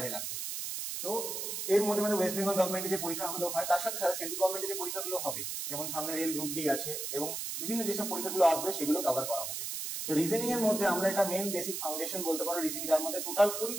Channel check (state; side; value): noise; right; hiss, 4 dB below the sound